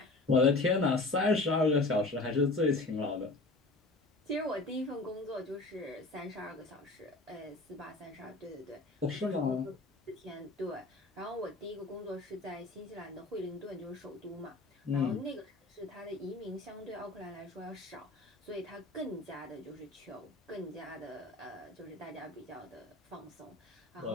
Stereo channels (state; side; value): quieter; right; 3.1 dB